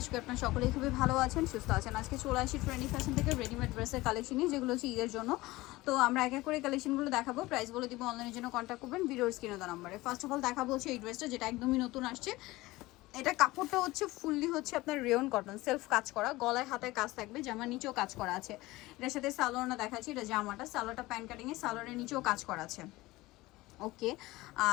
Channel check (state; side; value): quieter; right; 19.5 dB